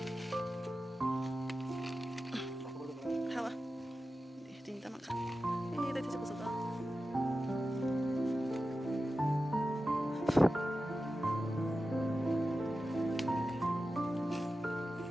하와. 진짜 많다. 내 뒤집어 써봐.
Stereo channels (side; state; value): both; normal; correlation 0.93